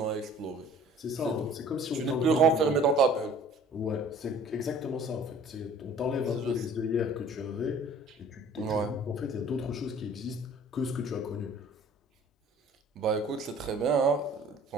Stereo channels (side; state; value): both; normal; correlation 0.49